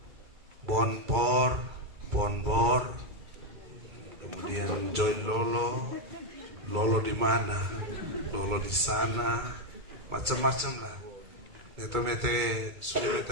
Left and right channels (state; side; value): late; left; 2.2 ms